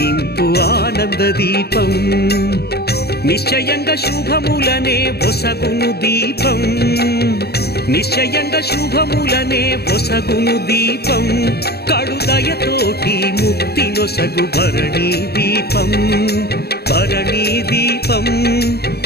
ఆనంద దీపం. నిశ్చయంగా శుభములనే ఒసగును దీపం, నిశ్చయంగా శుభములనే ఒసగును దీపం. కడుదయతోటి ముక్తి నొసగు భరణీ దీపం, భరణీ దీపం,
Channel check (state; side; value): late; right; 0.47 ms